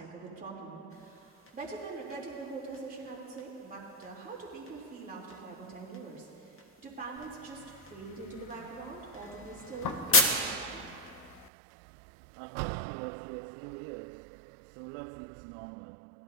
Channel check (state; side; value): drops out; left; at 11.5 s